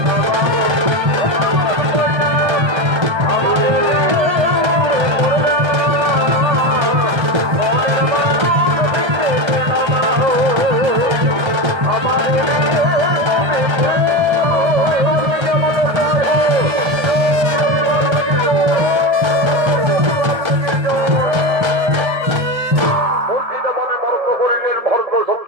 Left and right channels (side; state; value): left; late; 1.3 ms